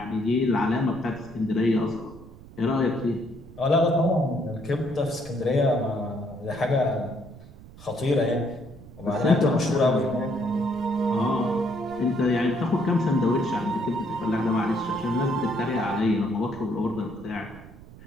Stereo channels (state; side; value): noise; right; rumble, 19 dB below the sound